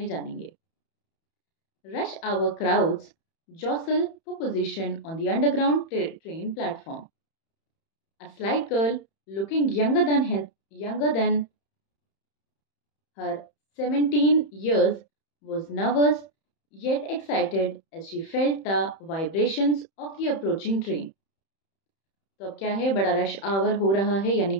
जानेंगे. Rush hour crowds jostle for position on the underground train platform. A slight girl looking younger than her 17 years was nervous yet excited as she felt the vibrations of the approaching train. तो अब क्या है, बड़ा rush our हो रहा है, यानी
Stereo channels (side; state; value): right; late; 31 ms